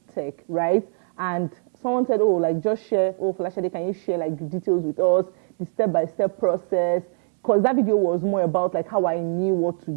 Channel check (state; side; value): silent; left; digital silence